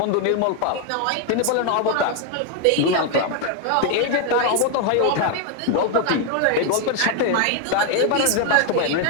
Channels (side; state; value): both; different; correlation 0.01